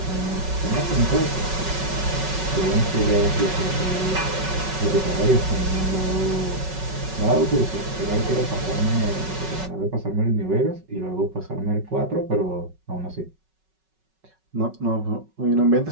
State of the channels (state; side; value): late; left; 5.3 ms